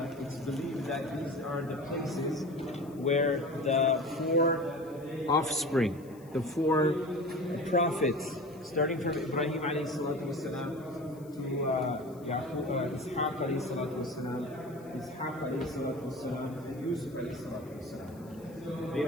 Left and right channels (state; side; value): noise; left; hiss, 27 dB below the sound